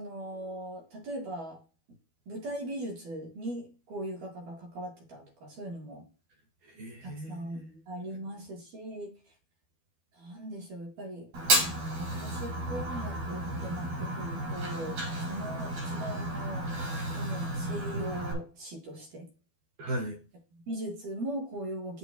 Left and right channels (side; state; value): left; late; 12 ms